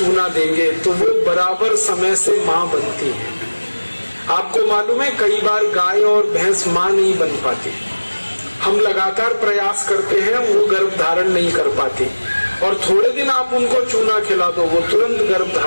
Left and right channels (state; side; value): inverted; both; correlation -1.00